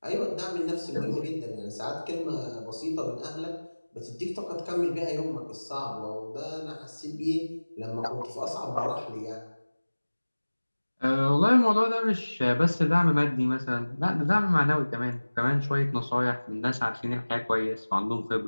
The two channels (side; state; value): both; inverted; correlation -1.00